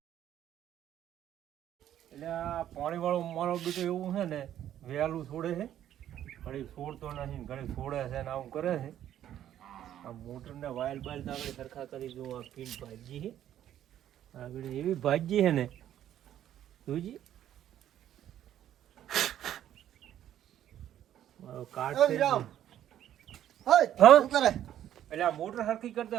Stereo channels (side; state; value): left; quieter; 11.3 dB